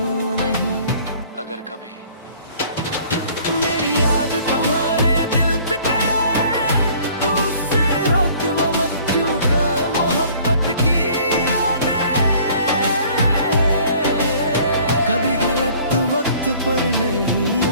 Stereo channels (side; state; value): both; inverted; correlation -0.53